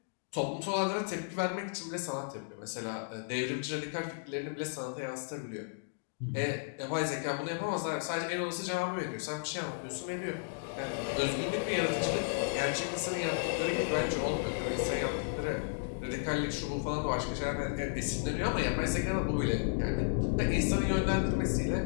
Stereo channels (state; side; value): silent; right; digital silence